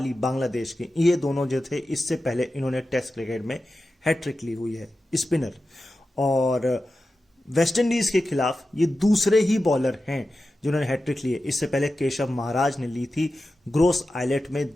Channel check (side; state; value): both; normal; correlation 0.93